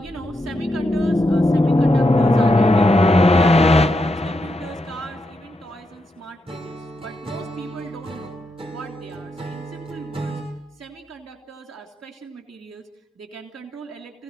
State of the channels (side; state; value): both; normal; correlation 0.83